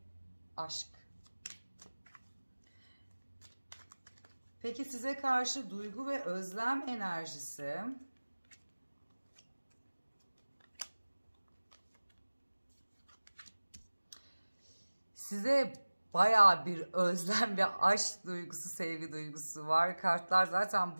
aşk. Peki size karşı duygu ve özlem enerjisi. size bayağı bir özlem ve aşk duygusu, sevgi duygusu var. Kartlar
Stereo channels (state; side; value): inverted; both; correlation -1.00